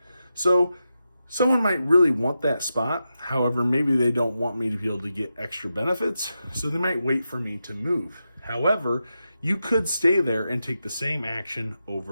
So someone might really want that spot. However, maybe they don't want me to be able to get extra benefits, so they might wait for me to move. However, you could stay there and take the same action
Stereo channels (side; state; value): both; inverted; correlation -0.89